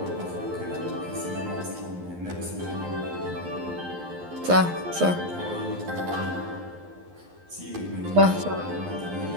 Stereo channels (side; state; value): left; late; 11 ms